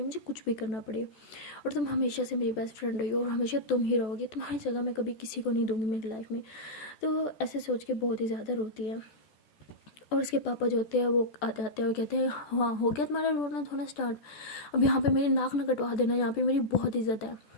मुझे कुछ भी करना पड़े, और तुम हमेशा से मेरी बेस्ट फ्रेंड रही हो और हमेशा तुम ही रहोगी, तुम्हारी जगह मैं कभी किसी को नहीं दूंगी मेरी लाइफ में। तो ऐसे सोच के बहुत ही ज़्यादा रोती है। और उसके पापा जो होते हैं वो आ जाते हैं और कहते हैं हाँ हो गया तुम्हारा रोना धोना स्टार्ट, अब यहाँ पे मेरी नाक ना कटवा देना, यहाँ पे मेरी बहुत इज्जत है।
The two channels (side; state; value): right; late; 14 ms